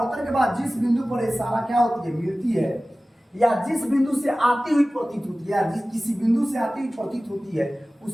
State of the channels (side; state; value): both; normal; correlation 0.97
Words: के बाद जिस बिंदु पर सारा क्या होती है, मिलती है, या जिस बिंदु से आती हुई प्रतीत होती है, या किसी बिंदु से आती हुई प्रतीत होती है,